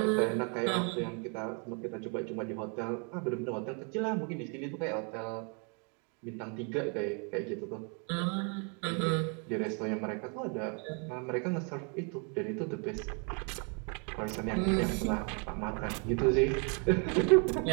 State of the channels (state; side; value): quieter; left; 37.4 dB